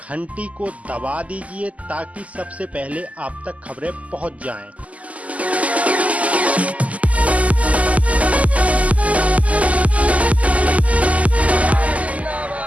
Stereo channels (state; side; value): late; left; 0.071 ms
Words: को दबा दीजिए ताकि सबसे पहले आप तक खबरें पहुंच जाएं।